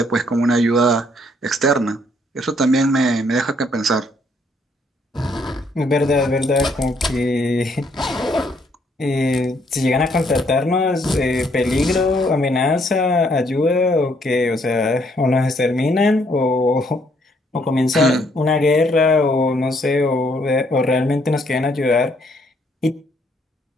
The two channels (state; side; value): normal; both; correlation 0.69